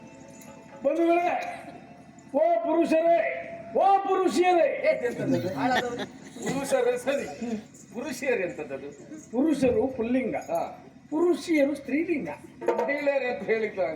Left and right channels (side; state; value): both; identical; correlation 1.00